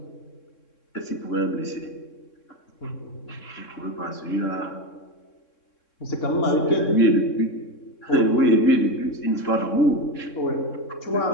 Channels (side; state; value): right; late; 3.6 ms